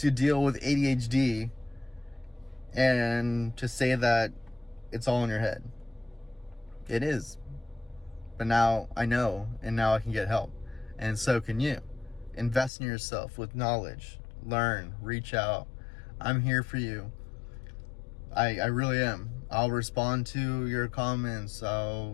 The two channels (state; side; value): drops out; right; at 12.7 s